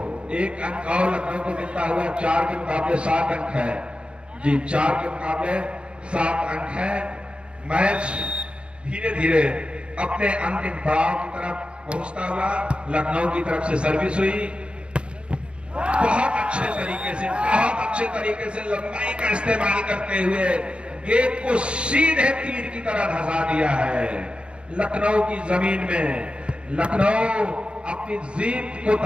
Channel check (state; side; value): late; left; 0.057 ms